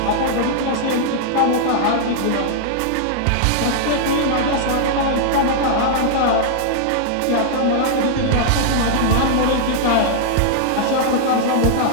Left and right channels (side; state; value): both; different; correlation -0.01